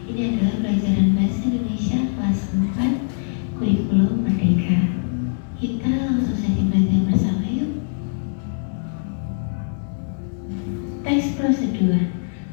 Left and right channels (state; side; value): silent; right; digital silence